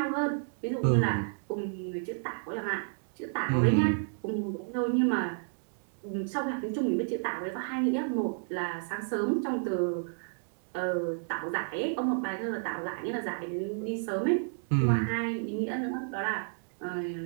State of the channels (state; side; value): silent; left; digital silence